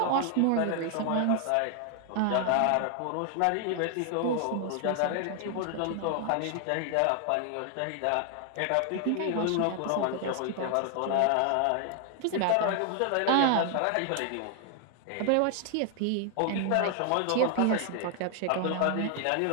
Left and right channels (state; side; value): different; both; correlation 0.00